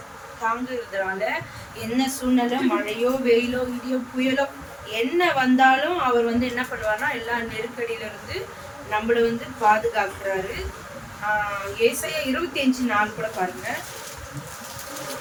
தாங்குறதுனால என்ன சூழ்நிலை, மழையோ வெயிலோ இடியோ புயலோ என்ன வந்தாலும் அவர் வந்து என்ன பண்ணுவார்னா எல்லா நெருக்கடியில இருந்து நம்மள வந்து பாதுகாக்கிறாரு. ஏசாயா 25:4 கூட பாருங்க.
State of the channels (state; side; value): identical; both; correlation 1.00